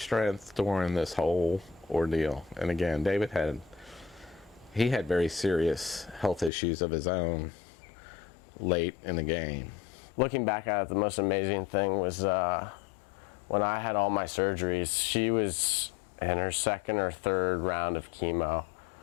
during this whole ordeal, and again, David had very serious health issues of his own late in the game. Looking back at it, the most amazing thing was when I had all my surgeries, she was in her second or third round of chemo,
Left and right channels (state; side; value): drops out; right; at 6.5 s